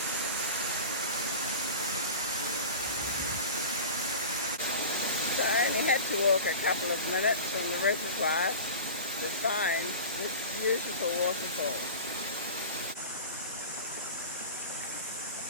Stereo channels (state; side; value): inverted; both; correlation -0.33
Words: had to walk a couple of minutes from the reservoir to find this beautiful waterfall.